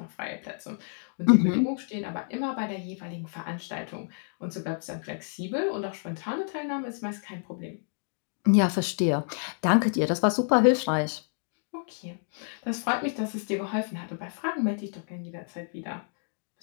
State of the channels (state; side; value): silent; right; digital silence